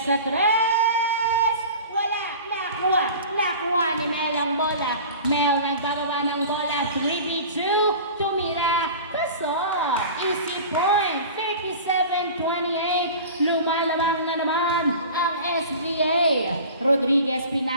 sa 3. Wala, nakuha ni Mel ang bola. Mel nagbababa ng bola, 3v2, tumira, pasok. Easy point, 37-28, lumalamang na naman ang SBA. Rodriguez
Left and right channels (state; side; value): inverted; both; correlation -0.38